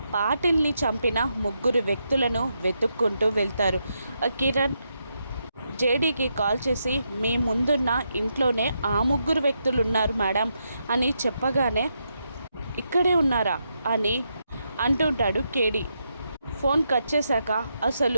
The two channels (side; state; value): both; inverted; correlation -0.82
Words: పాటిల్ని చంపిన ముగ్గురు వ్యక్తులను వెతుక్కుంటూ వెళ్తారు. కిరణ్ జేడీకి కాల్ చేసి, మీ ముందున్న ఇంట్లోనే ఆ ముగ్గురు వ్యక్తులు ఉన్నారు మేడం అని చెప్పగానే, ఇక్కడే ఉన్నారా అని అంటుంటాడు కేడి. ఫోన్ కట్ చేశాక,